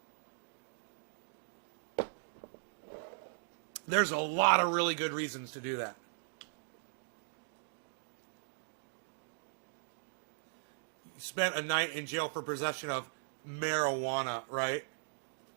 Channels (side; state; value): left; silent; digital silence